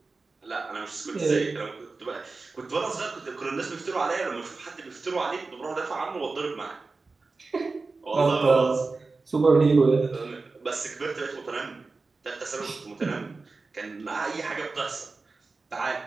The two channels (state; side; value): quieter; left; 3.9 dB